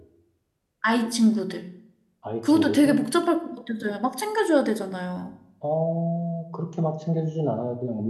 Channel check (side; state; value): both; identical; correlation 1.00